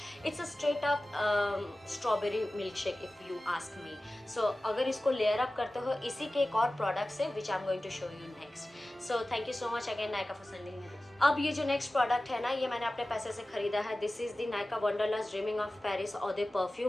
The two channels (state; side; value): normal; both; correlation 0.96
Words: it's a straight up strawberry milkshake if you ask me. So अगर इसको layer up करते हो इसी के एक और product से, which I'm going to show you next. So thank you so much again Nykaa for sending me this. अब ये जो next product है ना, ये मैंने अपने पैसे से खरीदा है. This is the Nykaa Wanderlust Dreaming of Paris Eau de